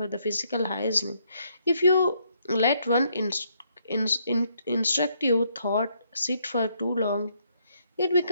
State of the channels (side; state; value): both; inverted; correlation -0.72